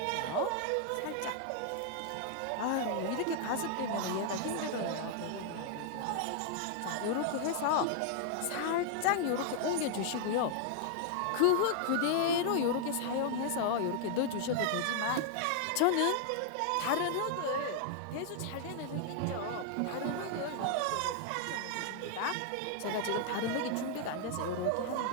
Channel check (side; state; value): both; different; correlation -0.01